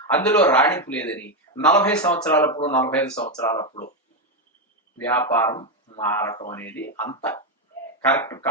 అందులో రాణింపు లేదని 40 సంవత్సరాలప్పుడు 45 సంవత్సరాలప్పుడు వ్యాపారం మారటం అనేది అంత కరెక్ట్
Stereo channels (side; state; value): both; normal; correlation 0.06